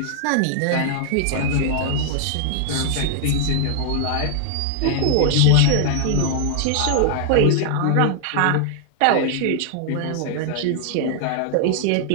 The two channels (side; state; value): both; different; correlation -0.01